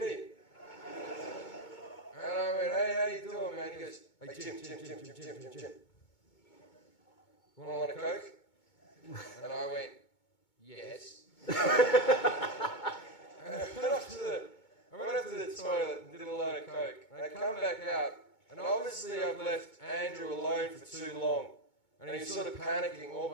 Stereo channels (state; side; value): late; right; 2.2 ms